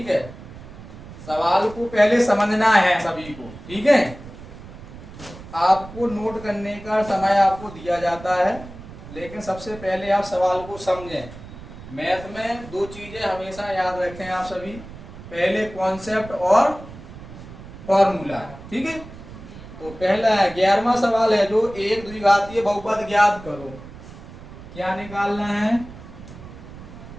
है। सवाल को पहले समझना है सभी को, ठीक है। आपको नोट करने का समय आपको दिया जाता है, लेकिन सबसे पहले आप सवाल को समझें। मैथ में दो चीजें हमेशा याद रखें आप सभी, पहले कॉन्सेप्ट और फॉर्मूला, ठीक है। तो पहला 11वां सवाल है जो एक द्विघातीय बहुपद ज्ञात करो। क्या निकालना है,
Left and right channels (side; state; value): right; noise; rumble, 15 dB below the sound